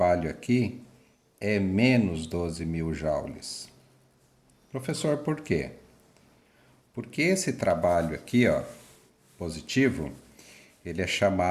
aqui é menos 12.000 joules. Professor, por quê? Porque esse trabalho aqui, ó, positivo, ele é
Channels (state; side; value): identical; both; correlation 1.00